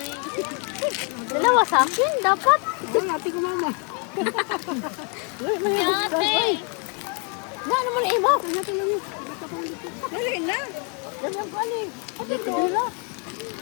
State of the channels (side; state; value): right; quieter; 36.8 dB